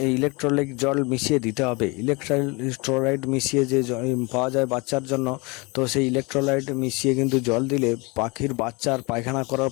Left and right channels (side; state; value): right; quieter; 27.4 dB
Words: এই ইলেকট্রোলাইট জল মিশিয়ে দিতে হবে। ইলেকট্রোলাইট মিশিয়ে যে পাওয়া যায় বাচ্চার জন্য, তো সেই ইলেকট্রোলাইট মিশিয়ে কিন্তু জল দিলে পাখির বাচ্চার পায়খানা করার